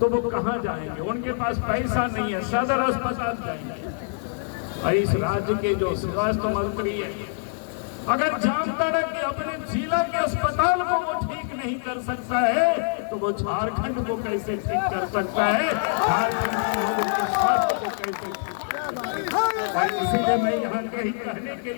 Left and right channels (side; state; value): right; silent; digital silence